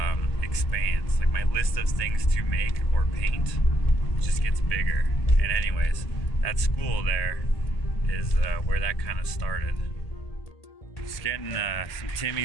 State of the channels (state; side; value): late; right; 1.8 ms